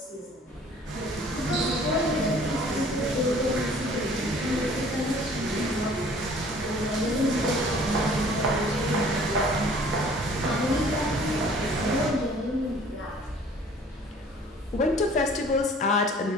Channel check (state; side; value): normal; both; correlation 0.52